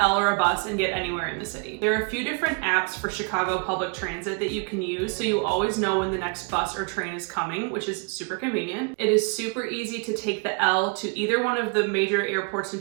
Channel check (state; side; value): quieter; left; 35.9 dB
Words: or a bus and get anywhere in the city. There are a few different apps for Chicago public transit that you can use, so you always know when the next bus or train is coming, which is super convenient. It is super easy to take the L to either one of the major airports in